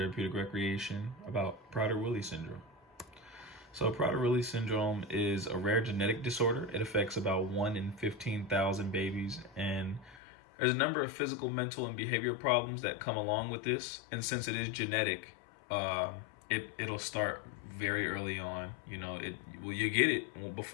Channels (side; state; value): right; drops out; at 10.2 s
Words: Recreation about Prader-Willi syndrome. So Prader-Willi syndrome is a rare genetic disorder. It affects about 1 in 15,000 babies, and there's a number of physical, mental, and behavioral problems that come along with this. And since it is genetic, it'll start very early on. You get it